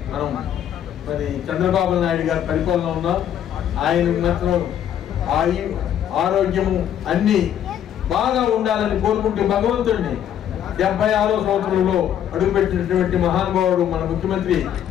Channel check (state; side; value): quieter; right; 10.0 dB